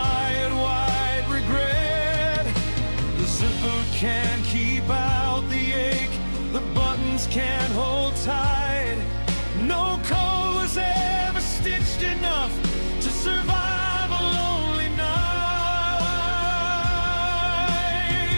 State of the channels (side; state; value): both; inverted; correlation -1.00